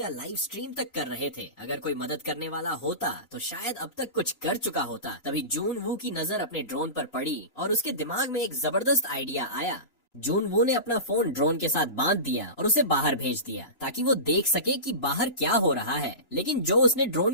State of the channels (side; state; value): right; late; 3.0 ms